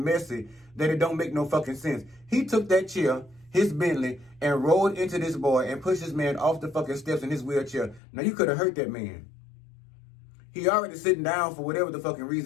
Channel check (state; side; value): drops out; right; at 8.0 s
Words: that it don't make no fucking sense. He took that chair, his Bentley, and rolled into this boy and pushed this man off the fucking steps in his wheelchair. Now, you could have hurt that man. He already sitting down for whatever the fucking